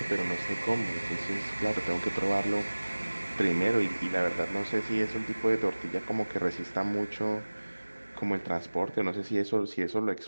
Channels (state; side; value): inverted; both; correlation -1.00